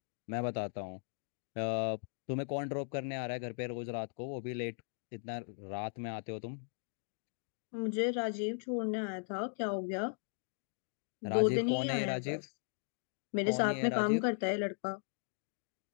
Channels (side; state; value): right; silent; digital silence